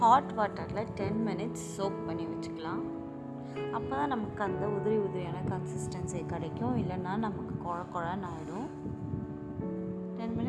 ஹாட் வாட்டரில் 10 மினிட்ஸ் சோக் பண்ணி வச்சுக்கலாம். அப்போ தான் நமக்கு அந்த உதிரியான கன்சிஸ்டன்சி கிடைக்கும், இல்லைன்னா நமக்கு குழன்னு ஆகிடும். 10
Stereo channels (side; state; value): both; identical; correlation 1.00